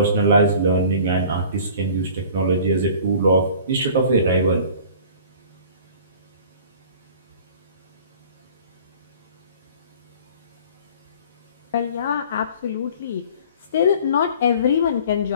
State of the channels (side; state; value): both; inverted; correlation -0.47